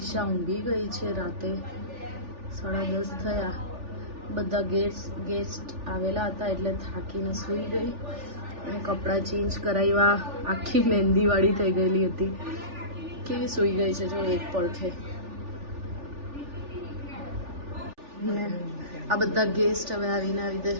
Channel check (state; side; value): late; left; 3.4 ms